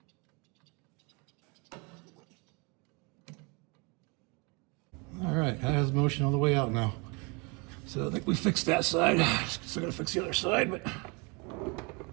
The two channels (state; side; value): quieter; left; 30.1 dB